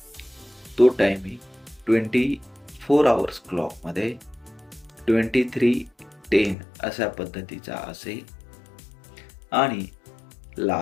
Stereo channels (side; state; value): right; drops out; at 6.6 s